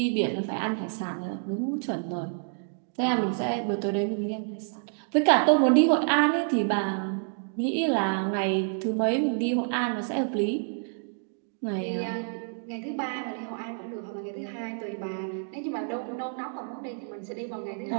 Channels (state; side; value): silent; left; digital silence